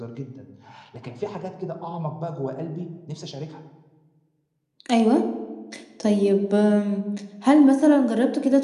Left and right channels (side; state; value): both; identical; correlation 1.00